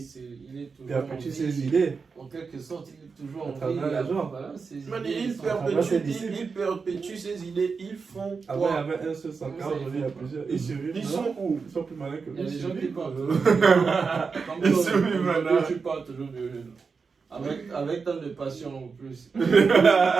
il est toujours Il a perdu en ses vie. idées. En quelque sorte, il est toujours À en vie. travers les gens. Voilà, ses Man, idées il sont- perpétue ses idées. Ils font Avant, il y quoi? avait un seul Sankara, aujourd'hui, il y a plusieurs. Ils survivent. Ils non? sont où? Ils sont plus malins que Il nous. y a des ils gens qui survivent. parlent. Comme Ils toi, sont humains, aujourd'hui, là. tu parles toujours de avec tant de passion en plus.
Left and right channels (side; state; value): left; quieter; 5.1 dB